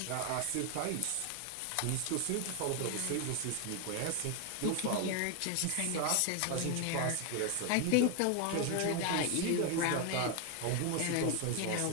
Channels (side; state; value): both; different; correlation 0.00